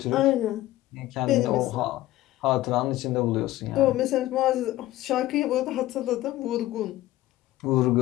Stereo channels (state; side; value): quieter; right; 15.9 dB